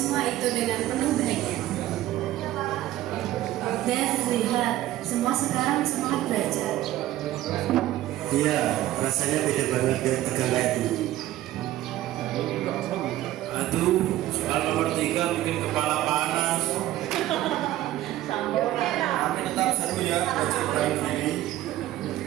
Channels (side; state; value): left; quieter; 14.6 dB